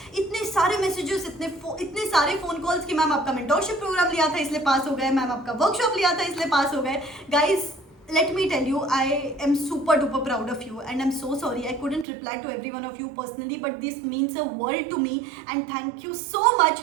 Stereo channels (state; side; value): drops out; left; at 12.1 s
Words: इतने सारे मैसेजेस, इतने सारे फोन कॉल्स कि मैम आपका मेंटोरशिप प्रोग्राम लिया था इसलिए पास हो गए, मैम आपका वर्कशॉप लिया था इसलिए पास हो गए। Guys, let me tell you, I am super duper proud of you and I'm so sorry I couldn't reply to every one of you personally, but this means a world to me and thank you so